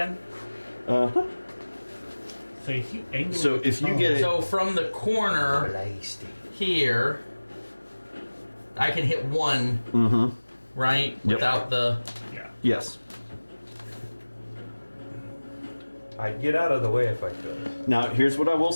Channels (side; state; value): both; inverted; correlation -1.00